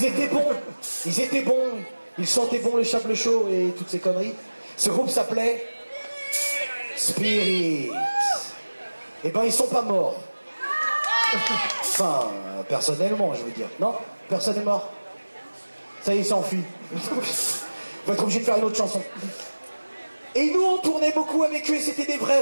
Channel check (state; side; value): inverted; both; correlation -1.00